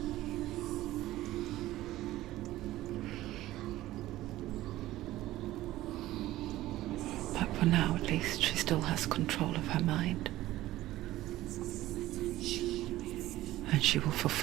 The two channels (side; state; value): left; quieter; 15.8 dB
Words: But for now, at least, she still has control of her mind. And she will